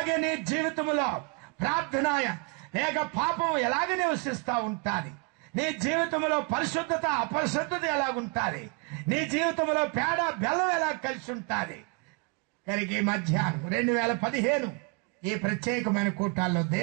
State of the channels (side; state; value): left; quieter; 30.7 dB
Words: నీ జీవితంలో ప్రార్థన లేక పాపం ఎలాగ నివసిస్తా ఉంటాది? నీ జీవితంలో పరిశుద్ధత అపరిశుద్ధత ఎలాగుంటాది? నీ జీవితంలో పేడ బెల్లం ఎలా కలిసి ఉంటాది? కనుక ఈ మధ్యాహ్నం 2015 ఈ ప్రత్యేకమైన కూటాల్లో